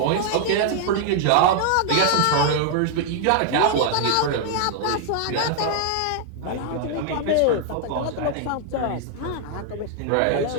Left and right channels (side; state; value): both; different; correlation 0.00